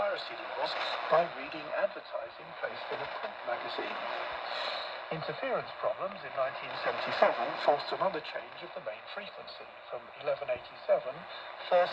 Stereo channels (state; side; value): identical; both; correlation 1.00